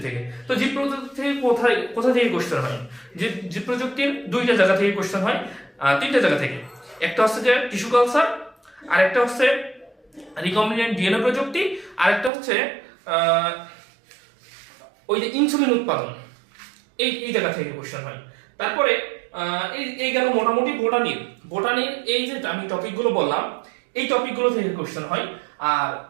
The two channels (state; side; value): drops out; left; at 12.3 s